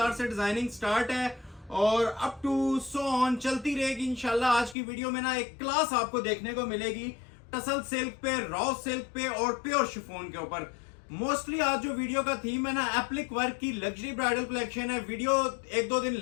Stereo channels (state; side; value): drops out; right; at 4.8 s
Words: से डिजाइनिंग स्टार्ट है और अप टू सो ऑन चलती रहेगी इंशाल्लाह। आज की वीडियो में ना एक क्लास आपको देखने को मिलेगी टसल सिल्क पे, रॉ सिल्क पे और प्योर शिफॉन के ऊपर। मोस्टली आज जो वीडियो का थीम है ना, एप्लिक वर्क की लग्जरी ब्राइडल कलेक्शन है। वीडियो एक दो दिन